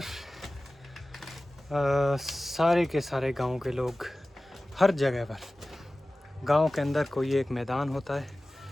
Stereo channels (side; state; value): both; normal; correlation 0.97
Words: सारे के सारे गांव के लोग हर जगह पर, गांव के अंदर कोई एक मैदान होता है,